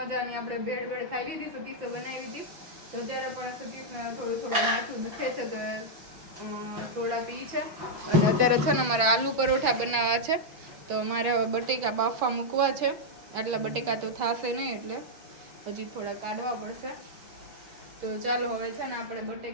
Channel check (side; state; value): left; late; 5.9 ms